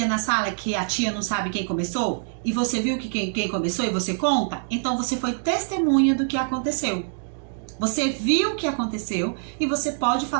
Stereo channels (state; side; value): silent; left; digital silence